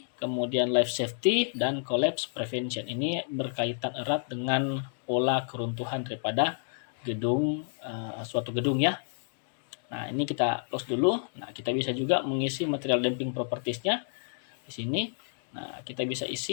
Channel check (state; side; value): silent; right; digital silence